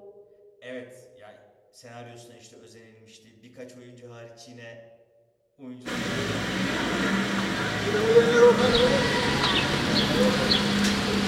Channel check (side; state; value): both; identical; correlation 1.00